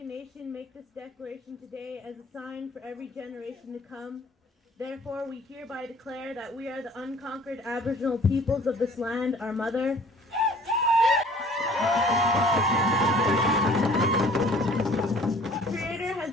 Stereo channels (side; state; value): both; normal; correlation 0.52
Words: Nation, make this declaration today as a sign for every generation to come. Therefore, we hereby declare that we are the unconquered Aboriginal peoples of this land, our mother. Creator